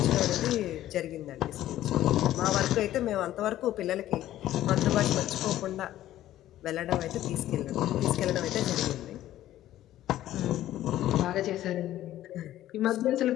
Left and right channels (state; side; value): quieter; right; 13.5 dB